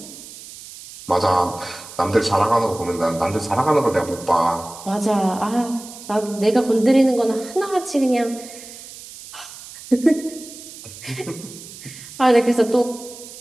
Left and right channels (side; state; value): right; noise; hiss, 16 dB below the sound